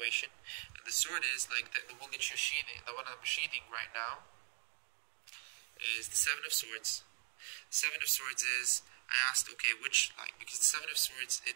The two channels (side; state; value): left; silent; digital silence